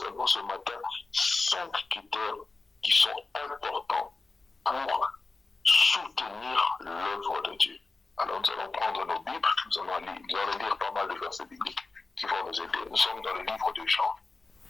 ce matin 5 critères qui sont importants pour soutenir l'œuvre de Dieu. Alors nous allons prendre nos Bibles, nous allons lire pas mal de versets bibliques qui vont nous aider. Nous sommes dans le livre de Jean,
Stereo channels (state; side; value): quieter; right; 3.6 dB